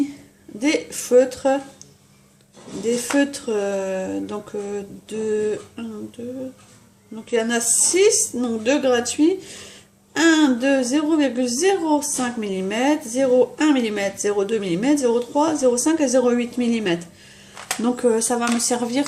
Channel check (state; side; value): identical; both; correlation 1.00